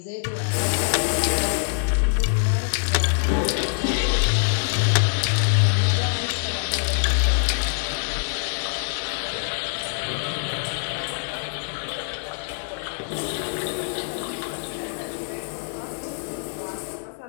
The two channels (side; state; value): right; silent; 62 dB below the other